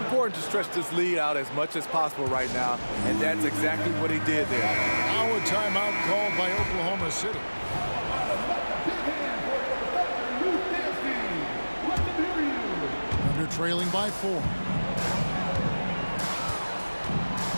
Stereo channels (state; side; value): inverted; both; correlation -1.00